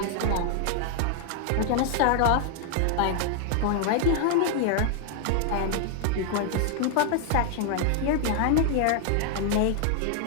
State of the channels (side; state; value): both; different; correlation 0.00